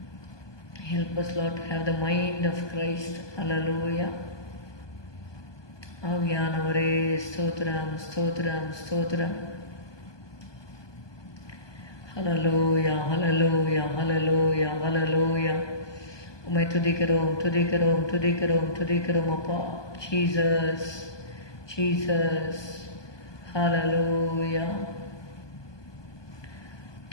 Help us, Lord, to have the mind of Christ. Hallelujah. ஆவியானவரே ஸ்தோத்திரம், ஸ்தோத்திரம், ஸ்தோத்திரம். ஹல்லேலூயா, ஹல்லேலூயா, ஹல்லேலூயா, ஹல்லேலூயா. உம்மை துதிக்கிறோம், துதிக்கிறோம், துதிக்கிறோம், துதிக்கிறோம் அப்பா. Jesus, Jesus. ஹல்லேலூயா.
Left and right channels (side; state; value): right; late; 1.2 ms